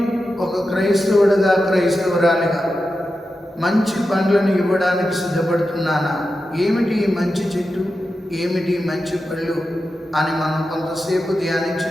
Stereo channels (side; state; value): both; normal; correlation 0.90